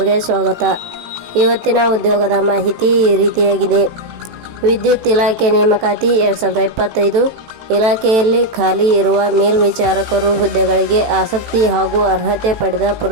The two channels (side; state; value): left; late; 18 ms